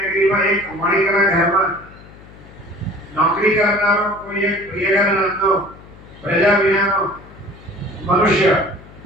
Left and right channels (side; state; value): left; noise; hum, 21 dB below the sound